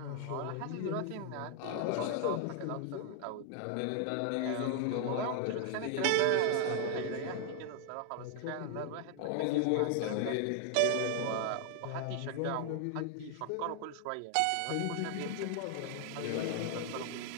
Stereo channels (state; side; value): different; both; correlation 0.00